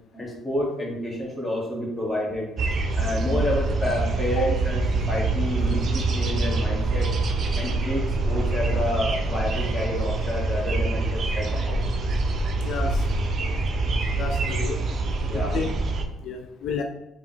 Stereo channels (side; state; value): both; normal; correlation 0.74